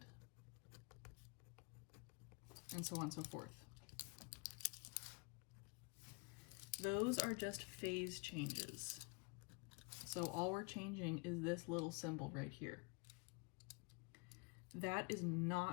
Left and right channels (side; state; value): right; quieter; 31.4 dB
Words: and so on and so forth. Those are just phase changes. So all we're changing is this little symbol right here. That is